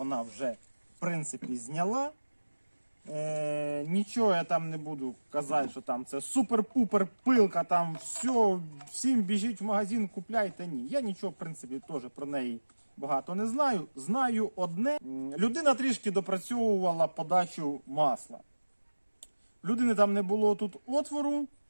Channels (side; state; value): both; inverted; correlation -1.00